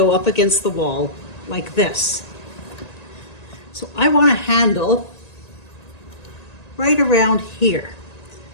up against the wall like this. So I want a handle right around here,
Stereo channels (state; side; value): late; right; 1.9 ms